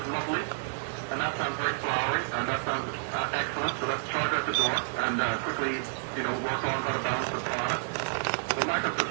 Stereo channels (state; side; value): silent; left; 58 dB below the other